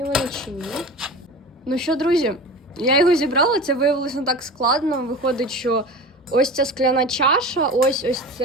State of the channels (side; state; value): both; normal; correlation 0.33